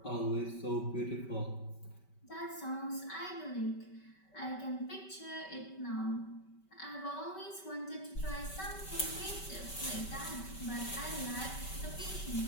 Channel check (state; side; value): late; right; 5.2 ms